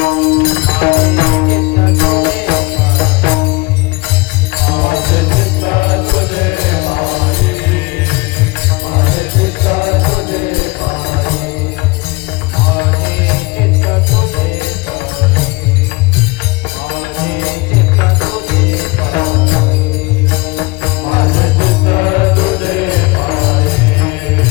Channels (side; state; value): right; quieter; 24.5 dB